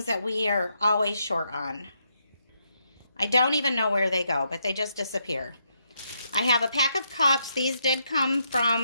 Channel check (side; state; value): both; inverted; correlation -0.78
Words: that we are always short on. I don't even know where they go, but they just disappear. I have a pack of cups. These did come